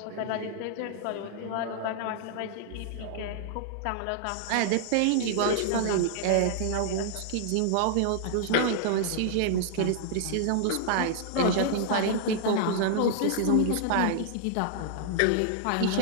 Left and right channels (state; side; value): different; both; correlation -0.01